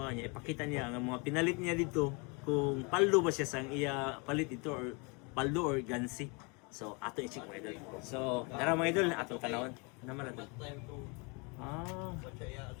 niya, ipakita niya ang mga pinalit niya dito kung paldo ba siya sang iya palit ito or paldo or gansi. So ato i-check mga idol. So tara mga idol ato tanawon naman ato.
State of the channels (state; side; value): quieter; right; 31.4 dB